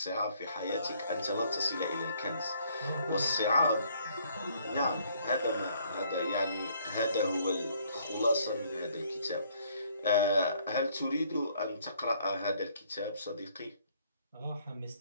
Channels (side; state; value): both; inverted; correlation -0.64